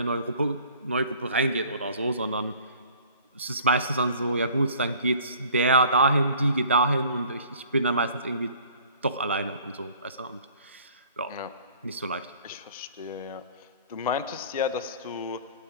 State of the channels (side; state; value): both; inverted; correlation -0.52